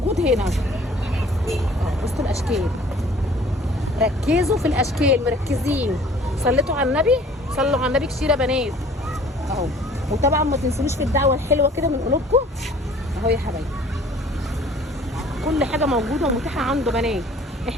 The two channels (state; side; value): normal; both; correlation 0.52